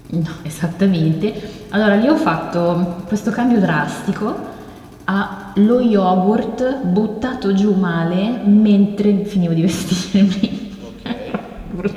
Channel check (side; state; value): both; identical; correlation 1.00